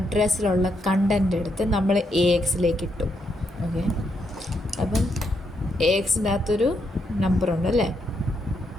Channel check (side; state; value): both; normal; correlation 0.79